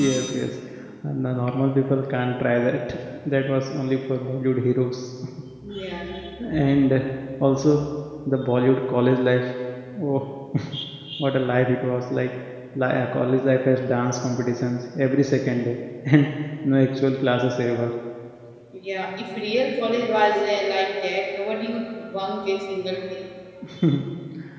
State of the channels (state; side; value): identical; both; correlation 1.00